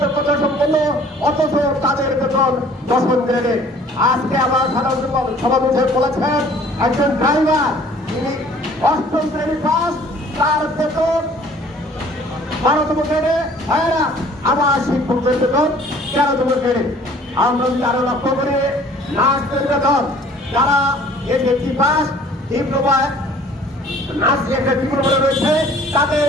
সম্পন্ন, অথচ তাদের বেতন 10 গ্রেডে। আজকে আমার সাধারণ সভাপতি বলেছেন একজন ড্রাইভার তিনি 8ম শ্রেণী পাস, তার বেতন 12তম গ্রেডে। ভাইয়েরা, আমার শিক্ষকদের বেতন 13তম গ্রেডে। আমরা যদি আরো লক্ষ্য করি নার্সের বেতন, যারা এসএসসি পাস, ডিপ্লোমা নার্স একটা ডিপ্লোমা রয়েছে, তাদের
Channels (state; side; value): normal; both; correlation 0.53